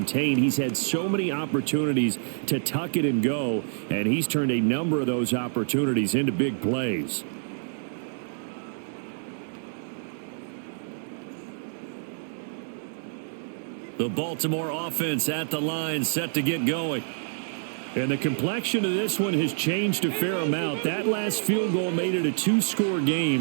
He's had so many opportunities to tuck it and go, and he's turned a number of those opportunities into big plays. The Baltimore offense at the line, set to get going. And the complexion of this one has changed a fair amount. That last field goal made it a 2-score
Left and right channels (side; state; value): left; silent; 60 dB below the other